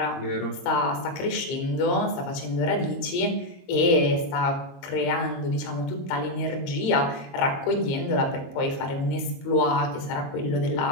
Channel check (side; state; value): right; late; 22 ms